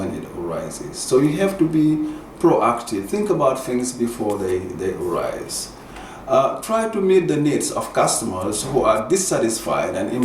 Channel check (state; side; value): identical; both; correlation 1.00